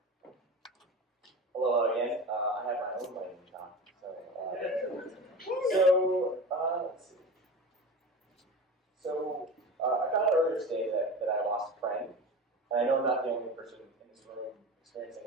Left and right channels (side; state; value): both; normal; correlation 0.30